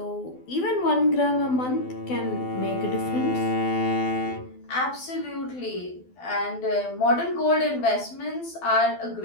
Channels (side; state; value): right; late; 12 ms